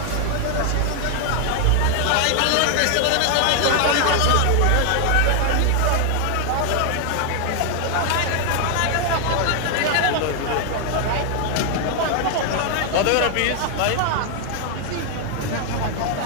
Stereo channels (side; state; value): both; different; correlation 0.00